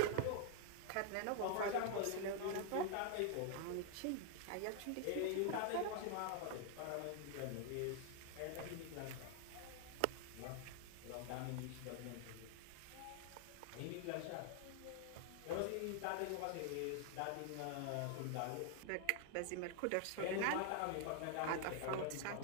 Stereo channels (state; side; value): different; both; correlation 0.00